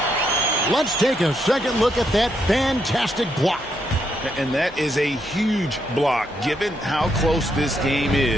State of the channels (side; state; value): both; normal; correlation 0.77